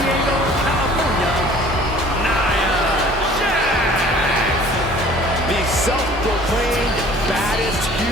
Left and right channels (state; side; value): normal; both; correlation 0.50